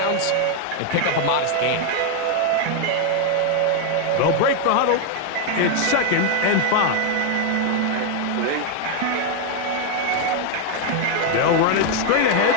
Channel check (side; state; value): both; different; correlation 0.01